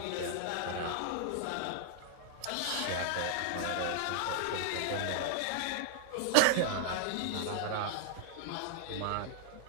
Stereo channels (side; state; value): both; different; correlation 0.00